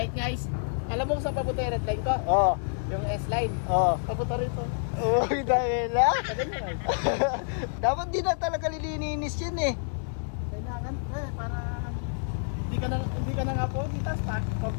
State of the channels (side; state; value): right; silent; digital silence